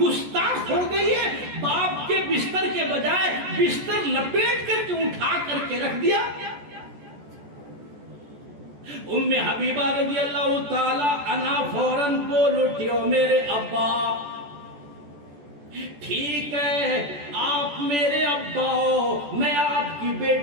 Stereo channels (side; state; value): left; late; 14 ms